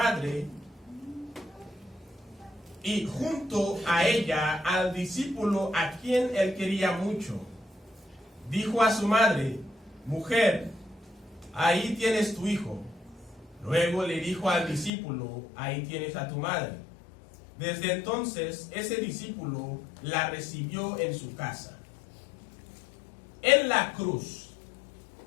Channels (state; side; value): drops out; right; at 14.9 s